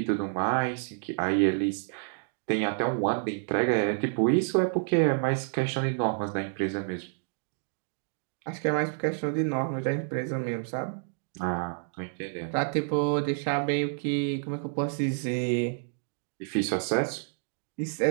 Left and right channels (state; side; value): silent; left; digital silence